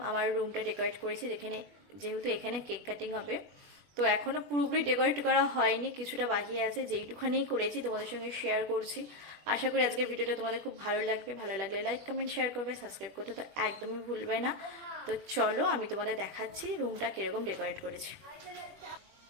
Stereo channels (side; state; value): left; late; 21 ms